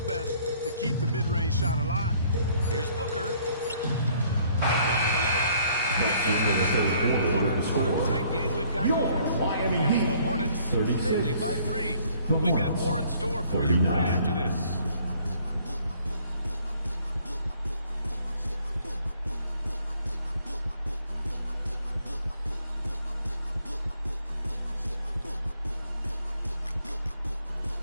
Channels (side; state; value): both; inverted; correlation -0.61